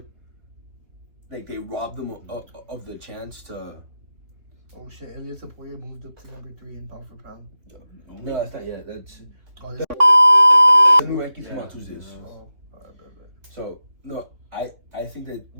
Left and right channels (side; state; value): left; late; 3.5 ms